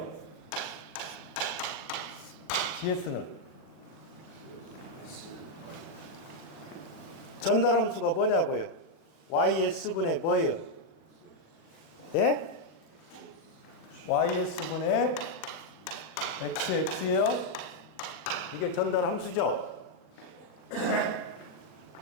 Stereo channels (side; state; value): right; late; 35 ms